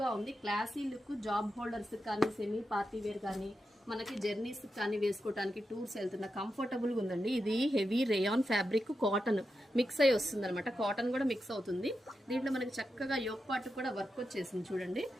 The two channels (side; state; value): both; normal; correlation 0.88